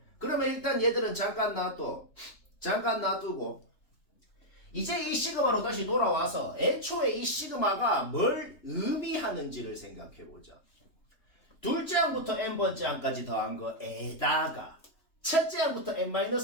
그러면 일단 얘들은 잠깐 놔두고 이제 이 시그마로 다시 돌아와서 애초에 이 시그마가 뭘 의미하는지를 생각해보자. 둘째 항부터 n번째 항까지 더한 거에다가 첫째 항부터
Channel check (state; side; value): late; right; 3.3 ms